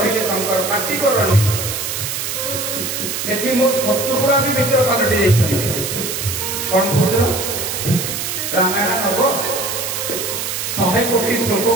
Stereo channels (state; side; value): noise; right; hiss, 3 dB below the sound